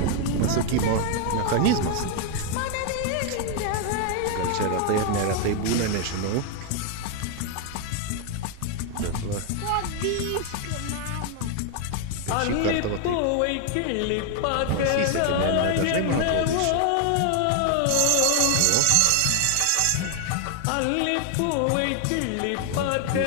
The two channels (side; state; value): both; different; correlation 0.00